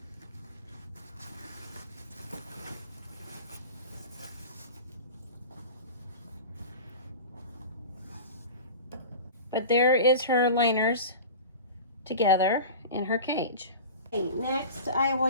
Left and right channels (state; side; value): inverted; both; correlation -0.34